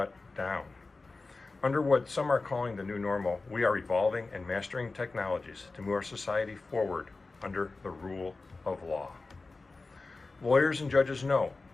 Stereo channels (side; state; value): right; quieter; 3.6 dB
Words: down. Under what some are calling the new normal, we are evolving and mastering technologies to move our society forward under the rule of law. Lawyers and judges know